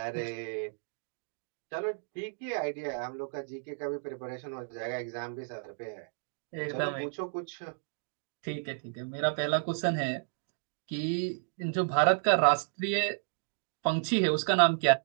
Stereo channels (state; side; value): silent; left; digital silence